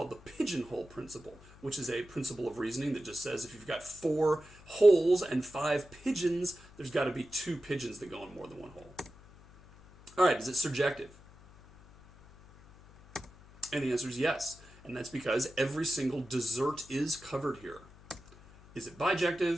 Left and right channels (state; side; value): noise; left; hum, 22 dB below the sound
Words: the pigeonhole principle, which is a principle of reasoning that just says if you've got 4 holes and 5 pigeons, there's got to be 2 pigeons that go in more than one hole. All right, is it surjective? And the answer is yes, and that's because every single dessert is covered here. Is it